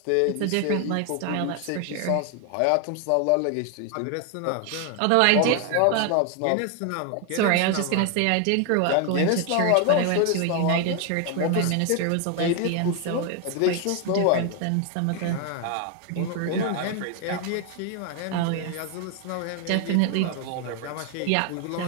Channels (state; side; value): different; both; correlation 0.01